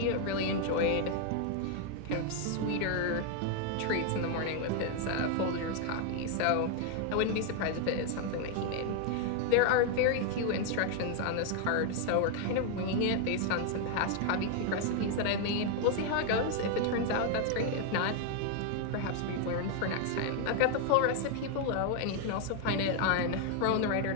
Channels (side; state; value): both; different; correlation 0.01